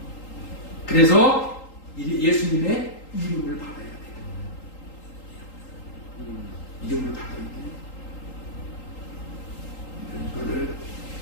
그래서 예수님의 이름을 받아야 돼요. 이름을 받아야 돼요. 이거를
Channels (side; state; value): right; late; 3.8 ms